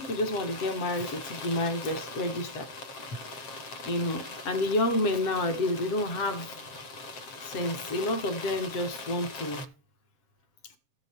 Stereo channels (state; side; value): late; right; 7.4 ms